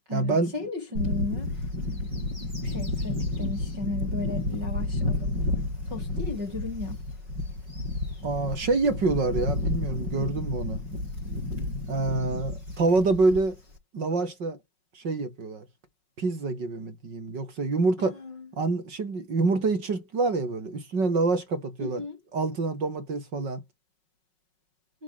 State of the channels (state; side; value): late; left; 5.4 ms